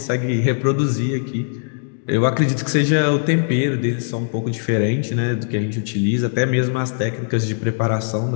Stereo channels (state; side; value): silent; right; digital silence